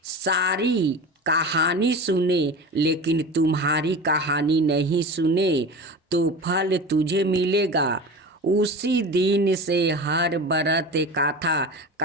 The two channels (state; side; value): normal; both; correlation 0.31